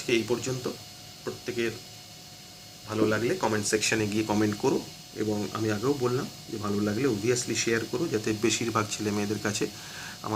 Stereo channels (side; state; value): both; identical; correlation 1.00